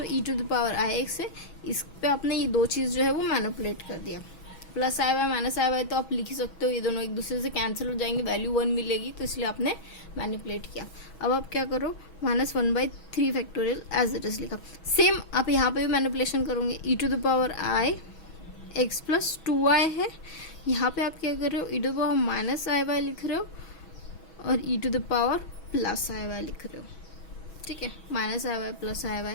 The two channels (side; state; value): right; late; 6.2 ms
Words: e to the power i x है, इस पे आपने ये दो चीज जो है वो मैनिपुलेट कर दिया। +i y -i y तो आप लिख ही सकते हो, ये दोनों एक दूसरे से कैंसिल हो जाएंगे, वैल्यू 1 मिलेगी, तो इसलिए आपने मैनिपुलेट किया। अब आप क्या करो, -1/3 फैक्टोरियल एज इट इज लिखा। सेम आप यहाँ पे भी मैनिपुलेशन करोगे, e to the power i x plus 2y है, यहाँ पे आप क्या कर रहे हो, e to the power -i y लिख रहे हो और e to the power plus i y लिख रहे हो, ठीक है, minus i y plus i